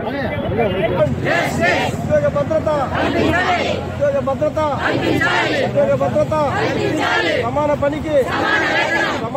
ఉద్యోగ భద్రత ఉద్యోగ భద్రత ఉద్యోగ భద్రత సమాన పనికి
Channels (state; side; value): identical; both; correlation 1.00